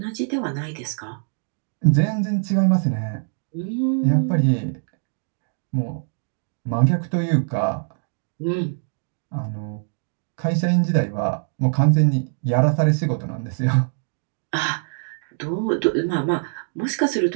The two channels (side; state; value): left; silent; digital silence